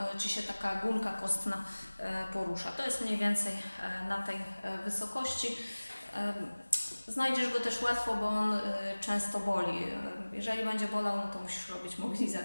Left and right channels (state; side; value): inverted; both; correlation -1.00